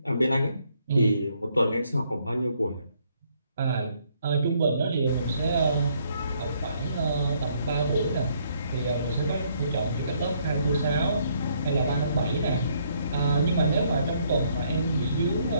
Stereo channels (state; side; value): inverted; both; correlation -0.69